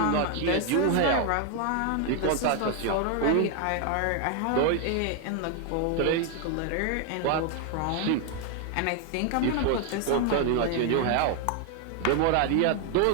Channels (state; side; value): different; both; correlation 0.00